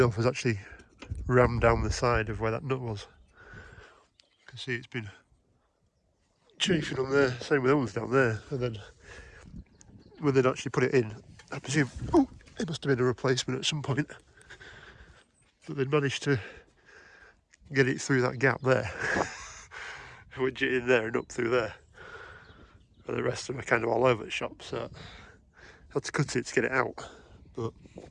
was actually rammed down the side of where that nut was. You can see it's been chafing on there, same with the ones down there. And then when they'd actually put it in, I presume, it must have been a replacement at some point. But they'd managed to get it through that gap there. Wedge it in there and up through there. And the rest of them are kind of all over the shop, so I had to cut it to get it out. But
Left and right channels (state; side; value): identical; both; correlation 1.00